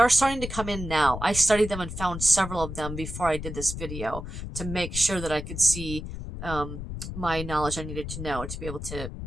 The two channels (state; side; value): noise; left; rumble, 8 dB below the sound